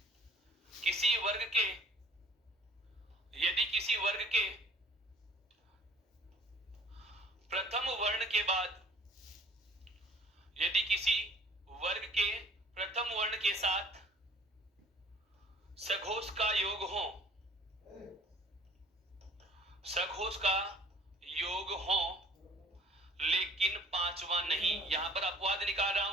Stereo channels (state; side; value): normal; both; correlation 0.53